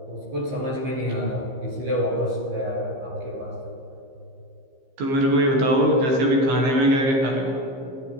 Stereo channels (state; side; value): late; left; 15 ms